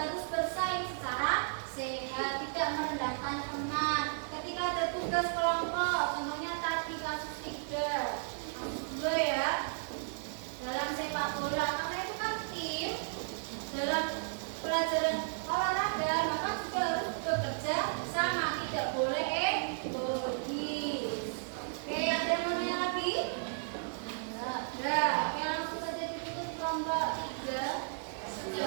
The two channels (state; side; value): silent; left; 55 dB below the other